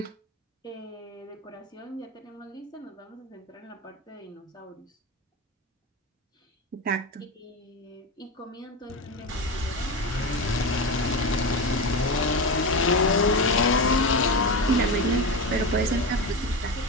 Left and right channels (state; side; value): normal; both; correlation 0.20